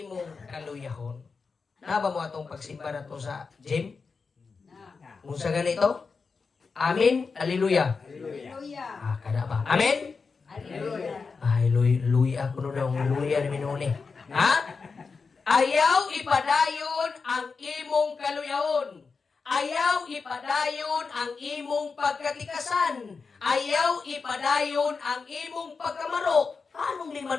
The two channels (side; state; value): right; quieter; 4.8 dB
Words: kaluyahon. Naba mo atong pagsimba na to sa gym? Kung sa ganito? Amin. Hallelujah. Kada ba? Amen? Ay, luya ako nun ang luya ni Minuni. Ha? Ayaw ipadayon ang imong kaluyahon. Ayaw ipadayon ang imong pagkatikasan. Ayaw ipadayon ang imong pagkamaro. Anong